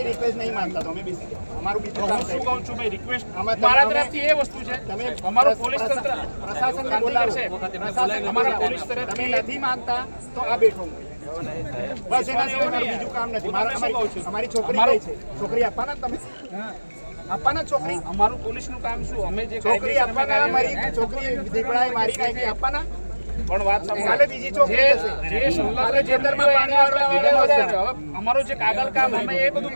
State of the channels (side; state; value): both; inverted; correlation -1.00